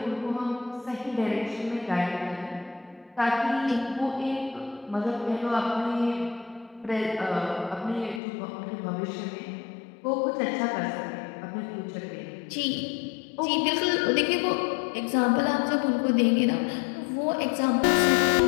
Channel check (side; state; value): right; drops out; at 8.2 s